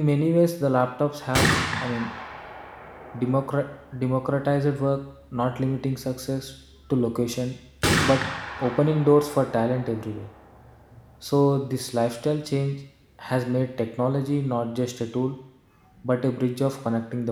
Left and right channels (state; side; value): identical; both; correlation 1.00